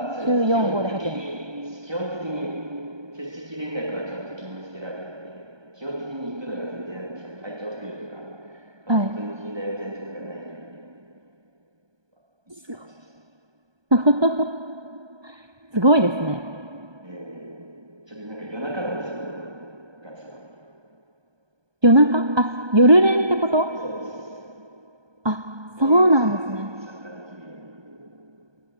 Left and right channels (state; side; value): late; left; 1.2 ms